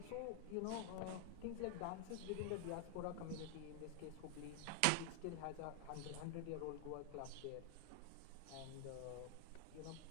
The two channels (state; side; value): different; both; correlation 0.00